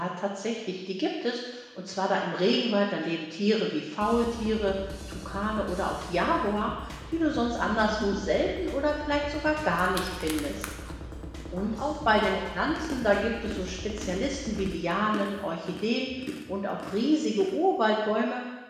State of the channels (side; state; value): both; identical; correlation 1.00